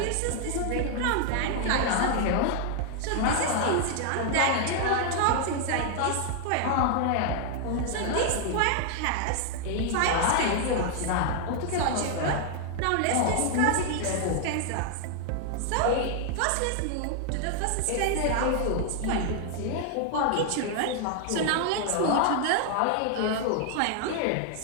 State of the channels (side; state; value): both; different; correlation 0.00